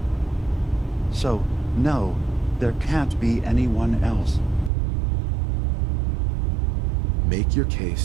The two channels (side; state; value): left; drops out; at 4.7 s